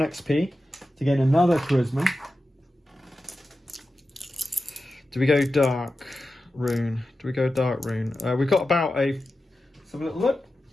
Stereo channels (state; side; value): normal; both; correlation 0.92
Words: XP to gain another charisma. Do we go dark rune? We've got about a... Let's have a little look.